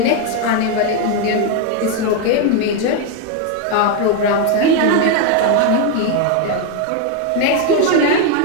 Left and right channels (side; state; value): both; different; correlation 0.01